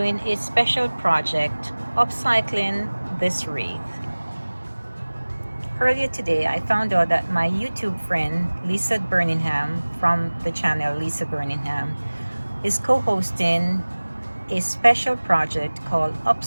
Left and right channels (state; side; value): inverted; both; correlation -1.00